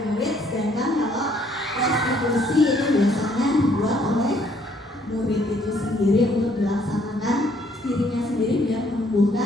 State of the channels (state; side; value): normal; both; correlation 0.65